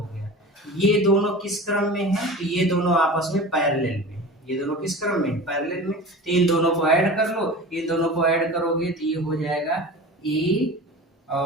गया। ये दोनों किस क्रम में है? तो ये दोनों आपस में पैरेलल में। ये दोनों किस क्रम में? पैरेलल में। तो इन दोनों को ऐड कर लो, इन दोनों को ऐड करोगे तो ये हो जाएगा a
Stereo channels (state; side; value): normal; both; correlation 0.35